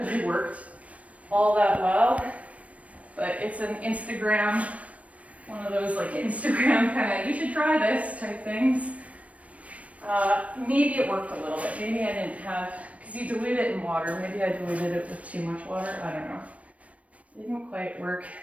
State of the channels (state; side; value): late; left; 0.066 ms